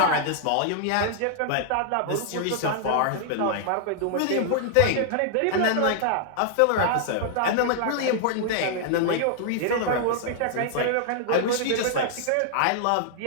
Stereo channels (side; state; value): both; different; correlation -0.01